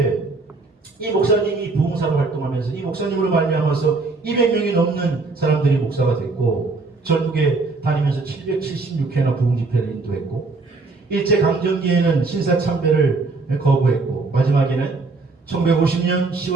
이 목사님이 부흥사로 활동하면서 이 목사님으로 말미암아서 200명이 넘는 사람들이 목사가 됐고 전국에 다니면서 776회나 부흥 집회를 인도했고 일제강점기에는 신사참배를 거부했고 마지막에는 1950년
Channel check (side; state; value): left; quieter; 3.8 dB